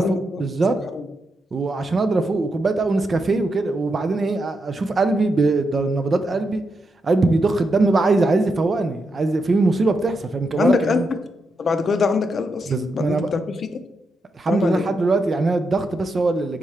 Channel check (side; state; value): both; normal; correlation 0.84